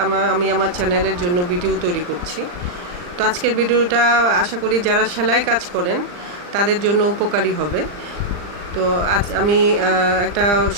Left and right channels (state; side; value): late; left; 39 ms